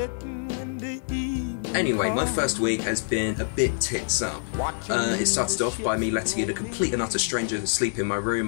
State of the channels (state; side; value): silent; right; digital silence